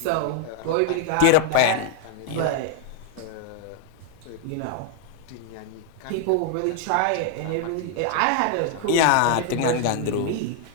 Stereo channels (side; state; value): both; different; correlation 0.00